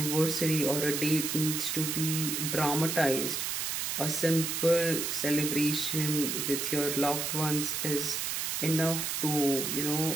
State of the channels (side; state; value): right; noise; hiss, 1 dB below the sound